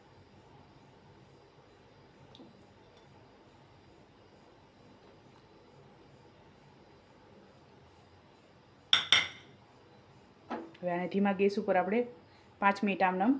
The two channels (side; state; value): both; identical; correlation 1.00